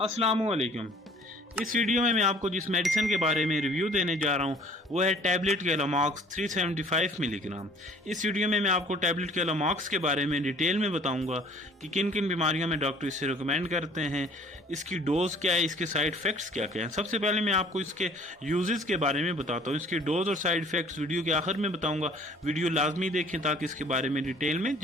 वालेकुम। इस वीडियो में मैं आपको जिस मेडिसिन के बारे में रिव्यू देने जा रहा हूँ वो है टैबलेट केलोमॉक्स 375 मिलीग्राम। इस वीडियो में मैं आपको टैबलेट केलोमॉक्स के बारे में डिटेल में बताऊंगा कि किन किन बीमारियों में डॉक्टर इसे रिकमेंड करते हैं, इसकी डोज क्या है, इसके साइड इफ़ेक्ट्स क्या क्या हैं। सबसे पहले मैं आपको इसके यूजेस के बारे में बताता हूँ। इसकी डोज और साइड इफ़ेक्ट्स वीडियो के आखिर में बताऊँगा। वीडियो लाजमी देखें ताकि इसके बारे में डिटेल में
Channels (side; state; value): both; normal; correlation 0.53